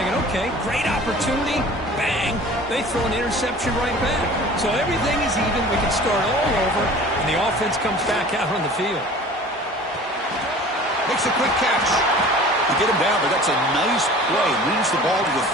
okay, great opportunity, bang, they throw an interception right back. So everything is even, we can start all over, and the offense comes back out on the field. Makes a quick catch. To get him down, but that's a nice play. Moves the ball to the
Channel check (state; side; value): normal; both; correlation 0.44